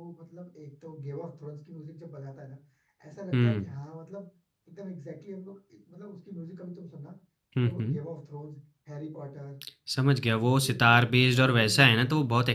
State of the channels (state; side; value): identical; both; correlation 1.00